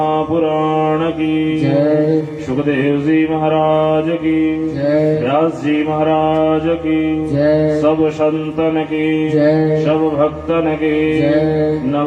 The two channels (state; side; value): identical; both; correlation 1.00